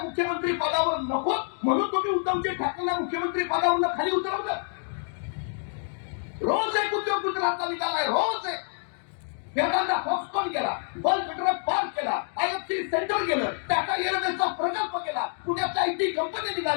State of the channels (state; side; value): silent; right; 60 dB below the other